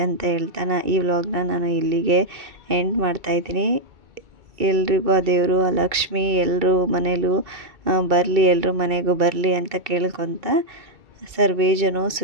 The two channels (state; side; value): late; left; 2.3 ms